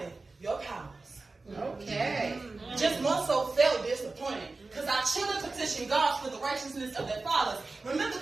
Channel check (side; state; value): left; quieter; 3.6 dB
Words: your powers. Okay. Just more so felt disappointed. Because I chill and petition God for the righteousness of their fathers. Remember